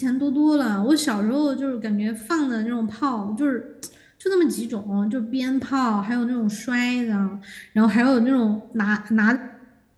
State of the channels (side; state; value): both; identical; correlation 1.00